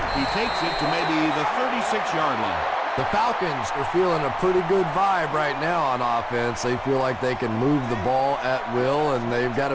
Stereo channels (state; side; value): identical; both; correlation 1.00